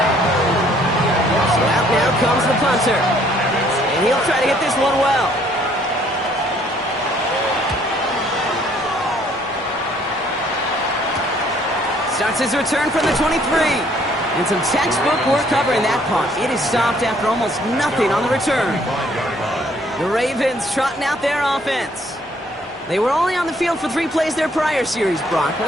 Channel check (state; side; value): normal; both; correlation 0.63